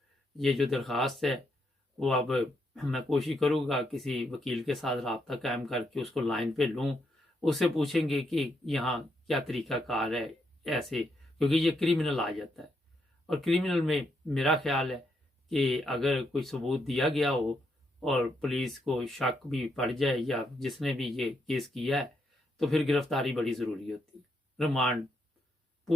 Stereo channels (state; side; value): normal; both; correlation 0.78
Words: ये जो दरख्वास्त है वो अब मैं कोशिश करूँगा किसी वकील के साथ रब्ता कायम करके उसको लाइन पे लूँ, उससे पूछेंगे कि यहाँ क्या तरीक़ाकार है ऐसे, क्योंकि ये क्रिमिनल आ जाता है। और क्रिमिनल में मेरा ख्याल है कि अगर कोई सबूत दिया गया हो और पुलिस को शक भी पड़ जाए या जिसने भी ये केस किया है, तो फिर गिरफ्तारी बड़ी ज़रूरी होती है। रिमांड,